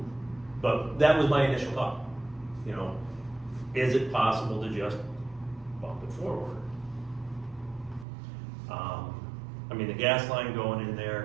but that was my initial thought. Is it possible to just bump it forward? I mean, the gas line going in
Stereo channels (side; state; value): left; drops out; at 8.1 s